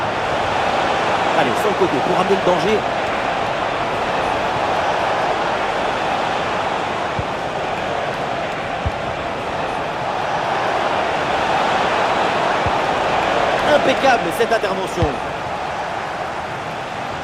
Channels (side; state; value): both; identical; correlation 1.00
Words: Allez, sur le côté pour amener le danger. Impeccable cette intervention.